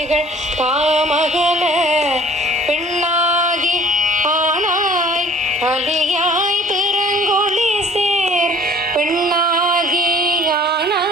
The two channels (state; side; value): normal; both; correlation 0.51